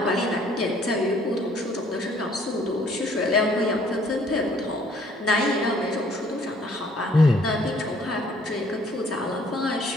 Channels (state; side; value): normal; both; correlation 0.61